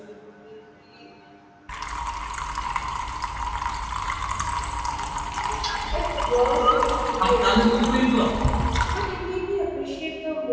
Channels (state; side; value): identical; both; correlation 1.00